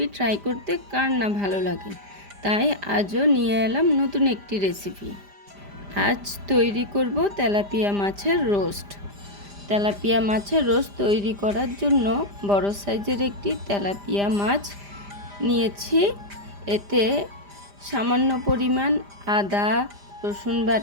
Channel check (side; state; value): left; late; 5.0 ms